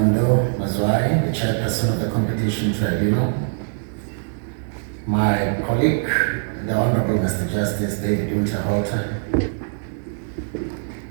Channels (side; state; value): left; silent; digital silence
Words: Mazwai, the Chairperson of the Competition Tribunal. My colleague, the Honorable Mr. Justice David Winterhalter,